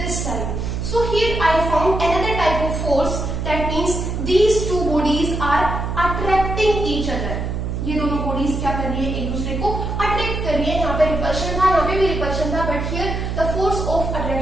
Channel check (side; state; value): right; noise; hum, 3 dB below the sound